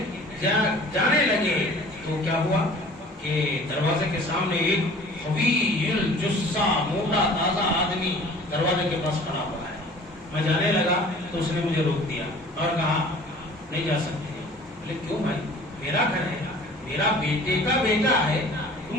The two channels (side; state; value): both; normal; correlation 0.47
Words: جانے لگے تو کیا ہوا کہ دروازے کے سامنے ایک قوی الجثہ موٹا تازہ آدمی دروازے کے پاس کھڑا ہوا ہے. میں جانے لگا تو اس نے مجھے روک دیا اور کہا نہیں جا سکتے. بولے کیوں بھائی، میرا گھر ہے، میرا بیٹے کا بیٹا ہے،